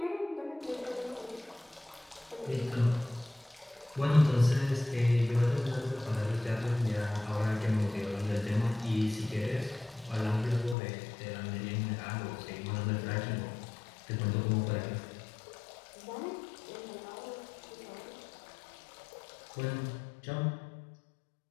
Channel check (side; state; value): right; drops out; at 10.8 s